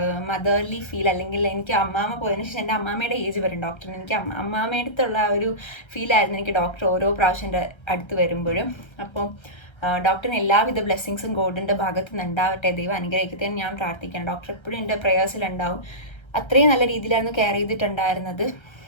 മദർലി ഫീൽ, അല്ലെങ്കിൽ എനിക്ക് അമ്മാമ്മ പോയതിനു ശേഷം എൻ്റെ അമ്മാമ്മയുടെ ഏജ് വരും ഡോക്ടറിന്, എനിക്ക് അമ്മാമ്മയുടെ അടുത്തുള്ള ആ ഒരു ഫീലായിരുന്നു എനിക്ക് ഡോക്ടർ ഓരോ പ്രാവശ്യം എൻ്റെ അടുത്ത് വരുമ്പോഴും. അപ്പോൾ ഡോക്ടറിന് എല്ലാവിധ ബ്ലെസ്സിങ്സും ഗോഡിൻ്റെ ഭാഗത്ത് നിന്ന് ഉണ്ടാവട്ടെ, ദൈവം അനുഗ്രഹിക്കട്ടെ എന്ന് ഞാൻ പ്രാർത്ഥിക്കണം. ഡോക്ടർ എപ്പോഴും എൻ്റെ പ്രേയേഴ്സിലുണ്ടാവും. അത്രയും നല്ല രീതിയിലായിരുന്നു കെയർ ചെയ്തിട്ടുണ്ടായിരുന്നത്.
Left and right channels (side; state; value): right; late; 1.3 ms